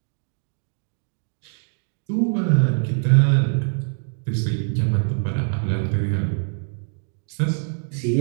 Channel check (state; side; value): silent; left; 63 dB below the other